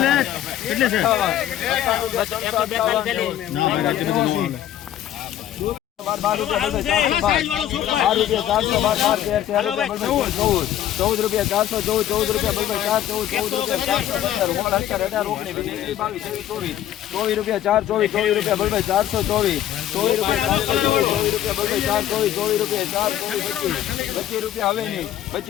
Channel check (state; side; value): quieter; right; 11.8 dB